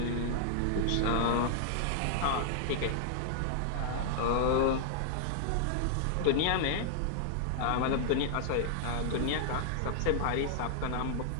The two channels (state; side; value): different; both; correlation -0.01